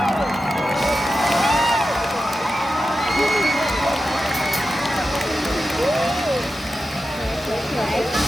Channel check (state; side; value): normal; both; correlation 0.91